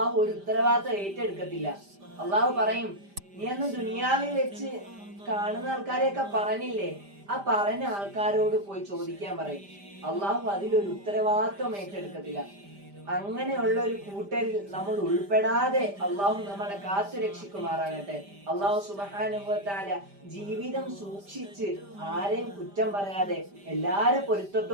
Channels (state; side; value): late; left; 5.0 ms